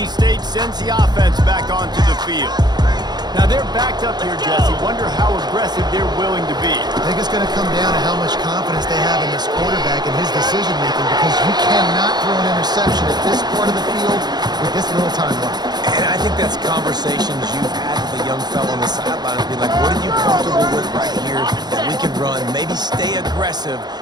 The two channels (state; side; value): late; left; 0.20 ms